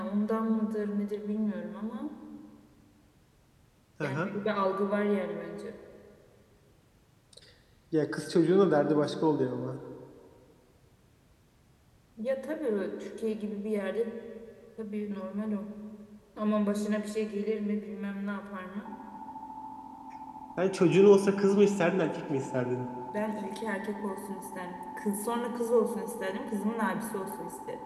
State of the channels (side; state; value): both; identical; correlation 1.00